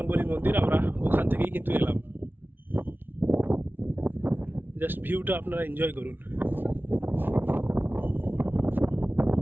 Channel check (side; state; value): left; late; 0.097 ms